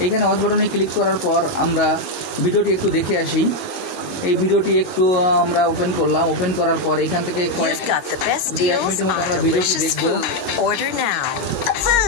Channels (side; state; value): right; late; 22 ms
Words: এইখানে ওয়াচ বাটনে ক্লিক করার পর আমরা ভিডিওটি একটু দেখে আসি। এই ভিডিওটি একটু আমরা ওপেন করলাম। ওপেন করার পর এখান থেকে কয়েক মিনিটের মতো আমরা ভিডিওটি দেখব।